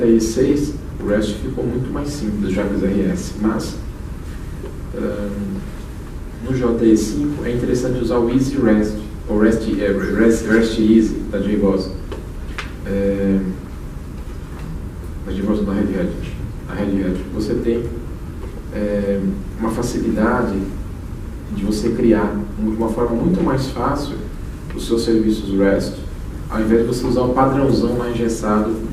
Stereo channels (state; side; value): identical; both; correlation 1.00